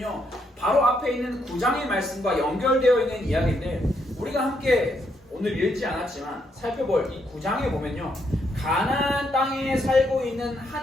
바로 앞에 있는 9장의 말씀과 연결되어 있는 이야기인데 우리가 함께 오늘 읽지 않았지만 살펴볼 이 9장에 보면요 가나안 땅에 살고 있는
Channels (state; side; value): normal; both; correlation 0.76